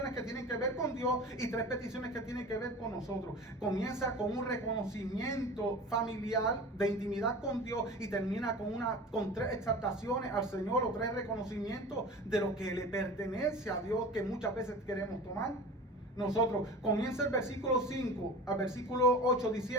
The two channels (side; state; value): both; normal; correlation 0.36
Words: que tienen que ver con Dios y 3 peticiones que tienen que ver con nosotros. Comienza con un reconocimiento familiar de intimidad con Dios y termina con 3 exaltaciones al Señor o 3 reconocimientos de lo que le pertenece a Dios que muchas veces queremos tomar. Nosotros, comienza el versículo 5 al versículo 8